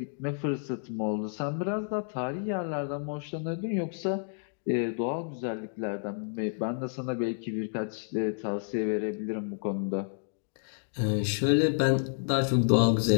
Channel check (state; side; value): silent; right; digital silence